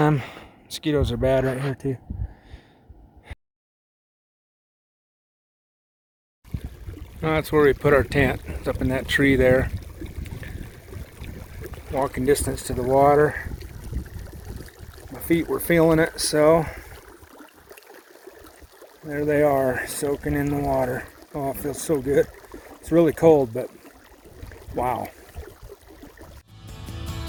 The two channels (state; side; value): identical; both; correlation 1.00